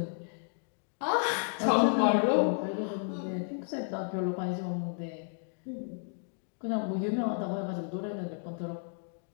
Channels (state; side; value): silent; right; 56 dB below the other